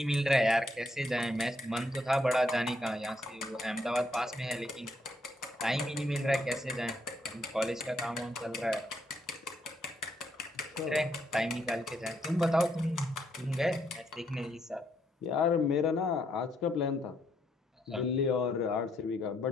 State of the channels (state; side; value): normal; both; correlation 0.74